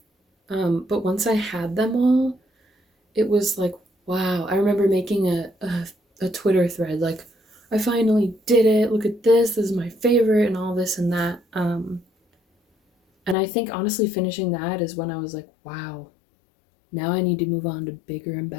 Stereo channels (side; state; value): right; drops out; at 13.4 s